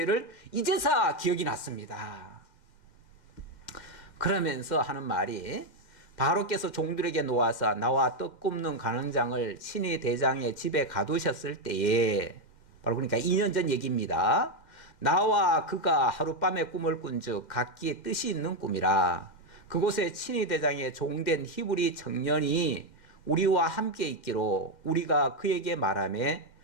이제서 기억이 났습니다. 그러면서 하는 말이 바로께서 종들에게 놓아서 나와 떡 굽는 간원장을 친히 대장의 집에 가두셨을 때에 바로 그러니까 2년 전 얘기입니다. 나와 그가 하룻밤에 꿈을 꾼즉 각기 뜻이 있는 꿈이라. 그곳에 친히 대장의 종된 히브리 청년이 우리와 함께 있기로 우리가 그에게 말하매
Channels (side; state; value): right; late; 2.1 ms